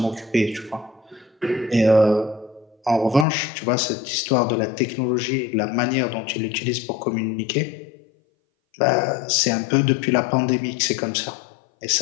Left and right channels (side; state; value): right; drops out; at 3.2 s